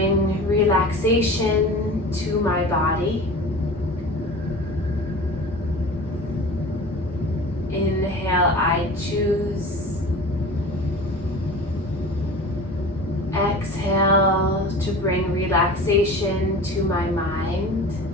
relaxation to my body. Inhale, I choose. Exhale to bring relaxation to my mind.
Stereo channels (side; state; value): both; normal; correlation 0.37